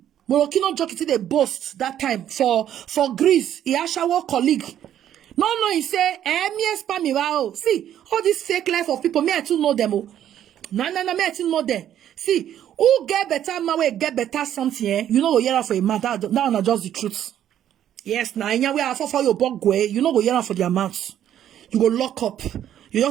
Moroccan jockey till they boast that time for Greece. He actual colleague. No, he say, me spam me wow. See, all this fake life of people, me I too know them. Oh. No, me I too know them. See, who get better man will get better something, eh? You know go hear for a man. That not just the truth. Yes, now we are for your bug way. You know go hear for the amounts. You go lock up. You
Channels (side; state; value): left; quieter; 10.8 dB